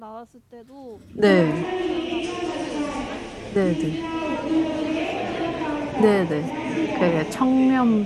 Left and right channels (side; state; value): both; identical; correlation 1.00